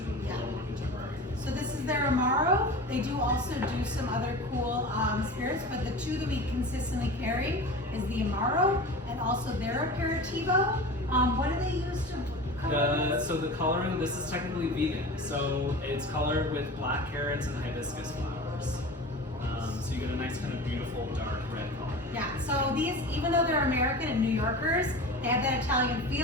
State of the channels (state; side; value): normal; both; correlation 0.34